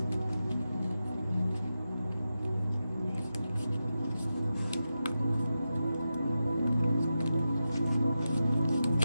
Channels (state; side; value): inverted; both; correlation -0.90